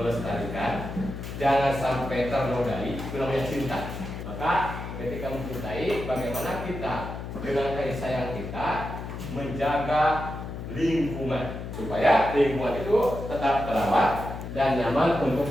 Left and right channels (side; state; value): left; noise; hum, 8 dB below the sound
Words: jangan sampai ternodai, itu namanya cinta. Maka ketika mencintai, bagaimana kita dengan kasih sayang kita menjaga lingkungan supaya lingkungan itu tetap terawat dan nyaman untuk